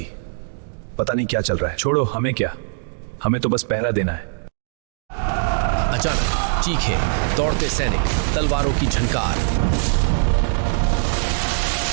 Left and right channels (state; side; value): silent; left; digital silence